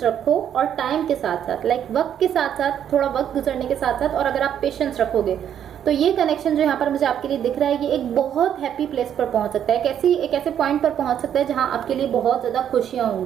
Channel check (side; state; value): left; quieter; 9.5 dB